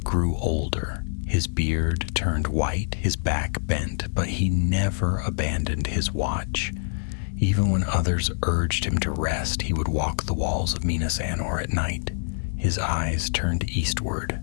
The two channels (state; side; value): silent; right; digital silence